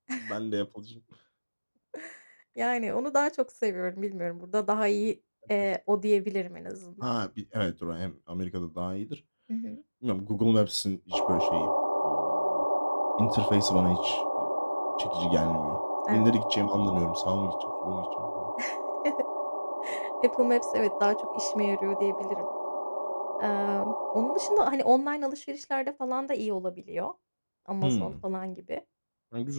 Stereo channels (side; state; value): both; inverted; correlation -1.00